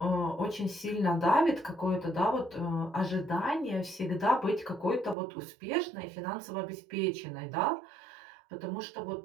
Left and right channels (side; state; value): left; drops out; at 5.2 s